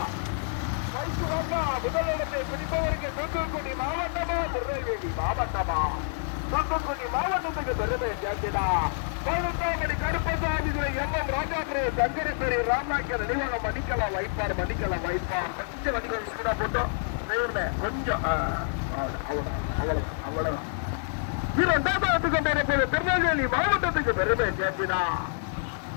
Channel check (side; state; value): right; silent; 60 dB below the other